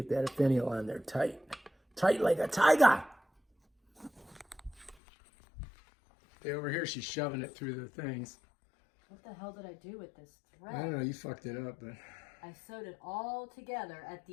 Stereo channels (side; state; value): right; drops out; at 5.0 s